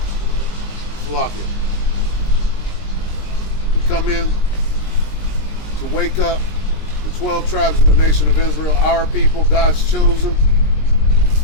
Slovakia. We come in to wake up the 12 tribes of the nation of Israel, our people, God's chosen,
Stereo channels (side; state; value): right; late; 20 ms